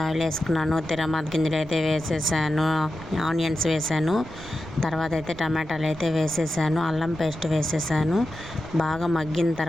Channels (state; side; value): noise; right; rumble, 16 dB below the sound